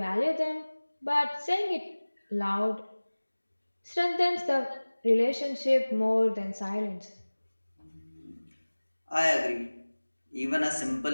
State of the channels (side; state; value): both; inverted; correlation -1.00